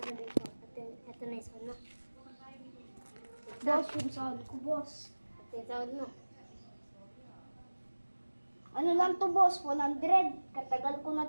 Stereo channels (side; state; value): both; inverted; correlation -1.00